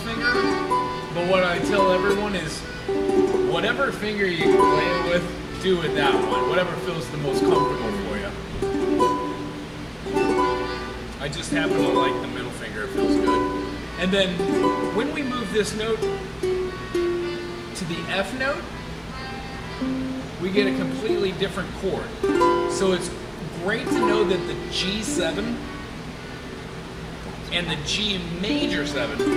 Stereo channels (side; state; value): both; identical; correlation 1.00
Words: but what I tell everyone is whatever finger you play it with, do with that one. Whatever feels the most comfortable for you. I just happen to like the middle finger, it feels good. And then when we move this note to the F note, we get a completely different chord. So it's great to know that the G7 and the G major